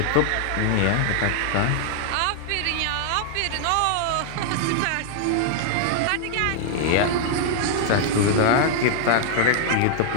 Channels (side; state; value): both; different; correlation 0.00